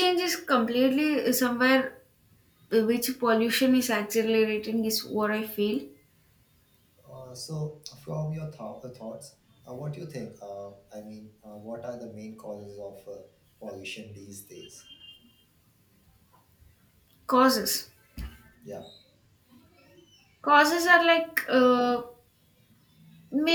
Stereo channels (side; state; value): both; identical; correlation 1.00